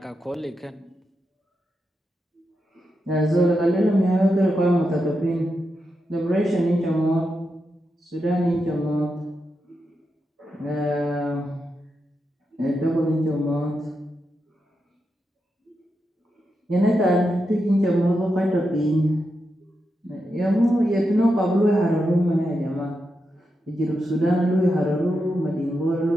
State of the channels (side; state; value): both; normal; correlation 0.86